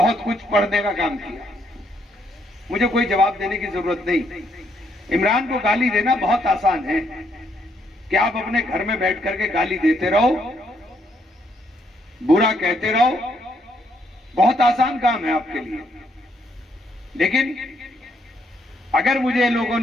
कुछ पढ़ने का काम किया। मुझे कोई जवाब देने की जरूरत नहीं। इमरान को गाली देना बहुत आसान है कि आप अपने घर में बैठ करके गाली देते रहो, बुरा कहते रहो, बहुत आसान काम है आपके लिए। लेकिन अगर मुझे लोगों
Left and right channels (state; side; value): normal; both; correlation 0.73